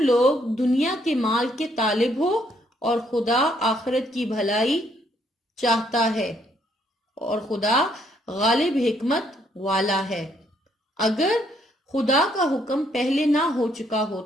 لوگ دنیا کے مال کے طالب ہو اور خدا آخرت کی بھلائی چاہتا ہے، اور خدا غالب حکمت والا ہے۔ اگر خدا کا حکم پہلے نہ ہو چکا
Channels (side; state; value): both; normal; correlation 0.70